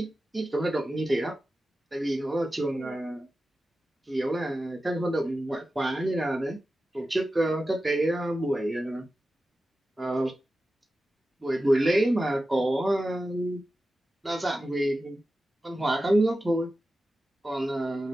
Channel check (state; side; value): normal; both; correlation 0.93